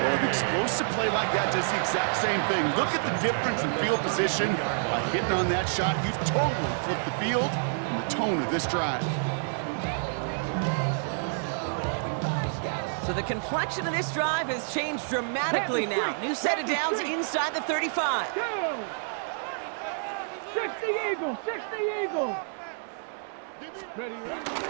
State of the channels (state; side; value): silent; left; 59 dB below the other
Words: an explosive play like that does the exact same thing. Look at the difference in field position. By hitting on that shot, you've totally flipped the field and the tone of this drive. So the complexion of this drive has changed dramatically now. New set of downs inside the 35. 60 Eagles, 60 Eagles. Give,